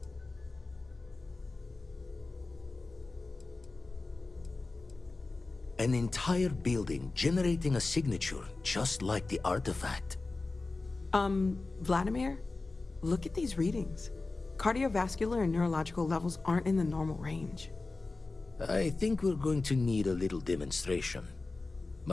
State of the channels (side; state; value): right; quieter; 3.5 dB